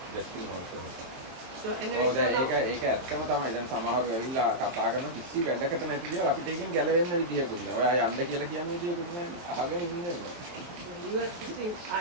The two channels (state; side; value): late; left; 23 ms